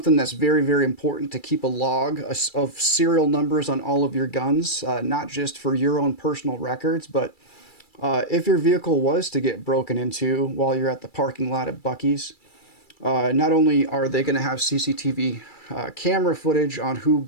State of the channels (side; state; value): right; late; 2.3 ms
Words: that's very, very important, to keep a log of serial numbers on all of your guns, not just for your own personal records, but if your vehicle was to get broken into while you're at the parking lot at Buc-ee's, not only are they going to have CCTV camera footage on who